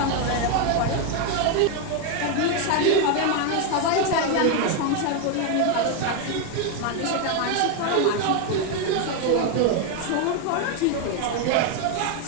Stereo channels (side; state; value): both; different; correlation 0.01